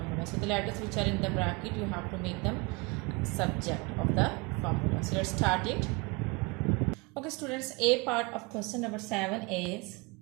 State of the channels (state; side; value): quieter; left; 27.7 dB